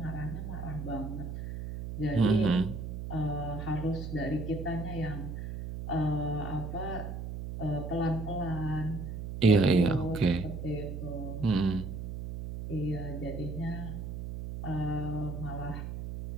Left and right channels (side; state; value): right; noise; hum, 6 dB below the sound